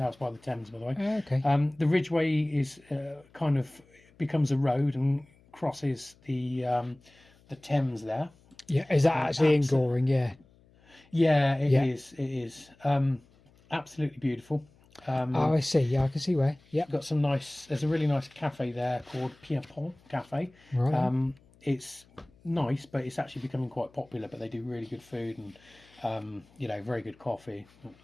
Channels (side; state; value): left; noise; hum, 29 dB below the sound